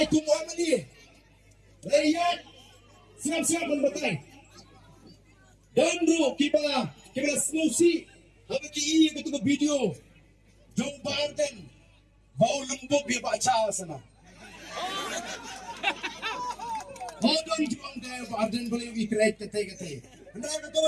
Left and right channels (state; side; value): identical; both; correlation 1.00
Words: tungguan mali. Rakyat siap-siap membatai. Dan bro kita solusi. Habis ki betul video. Jom Barden. Bau lembut dia baca sana. Hodon juang dia Barden boleh ikret kete. Anda betul